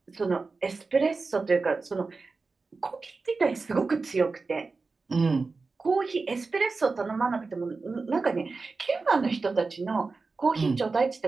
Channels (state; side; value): quieter; left; 4.1 dB